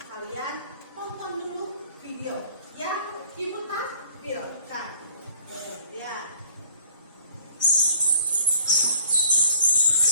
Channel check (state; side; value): inverted; both; correlation -0.56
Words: kalian tonton dulu video yang Ibu tampilkan. Lihat.